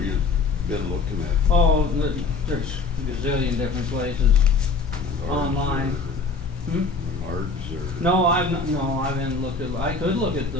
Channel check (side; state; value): right; quieter; 4.2 dB